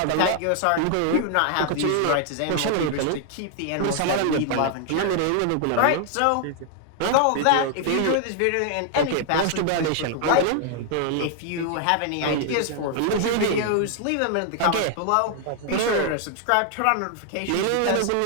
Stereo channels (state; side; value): different; both; correlation 0.00